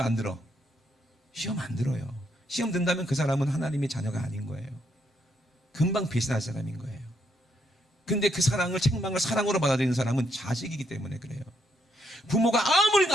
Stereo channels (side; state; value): both; normal; correlation 0.76